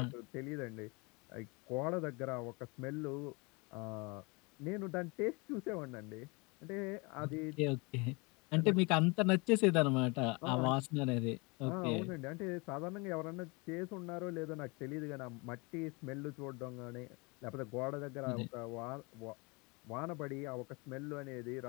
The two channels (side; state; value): right; quieter; 28.6 dB